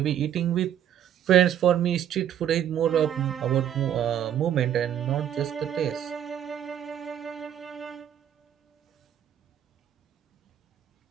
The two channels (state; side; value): quieter; left; 10.3 dB